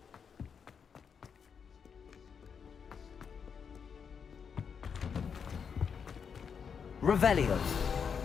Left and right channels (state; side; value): quieter; right; 6.6 dB